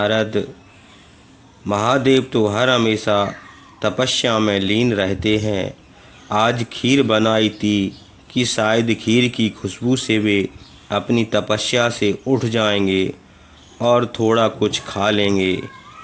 महादेव तो हर हमेशा तपस्या में लीन रहते हैं। आज खीर बनाई थी कि शायद खीर की खुशबू से वे अपनी तपस्या से उठ जाएंगे और थोड़ा कुछ खा लेंगे।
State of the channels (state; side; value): identical; both; correlation 1.00